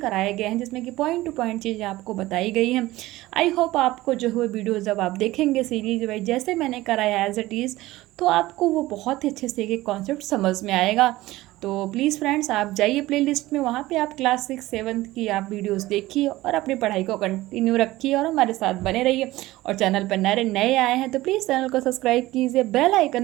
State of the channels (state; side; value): quieter; left; 17.8 dB